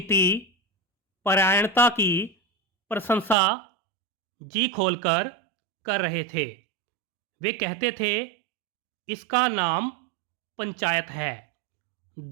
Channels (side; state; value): left; drops out; at 3.4 s